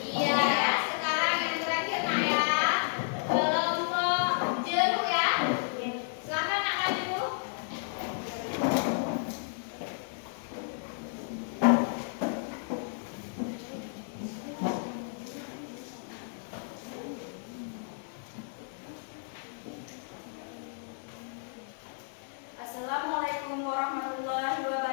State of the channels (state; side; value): silent; right; digital silence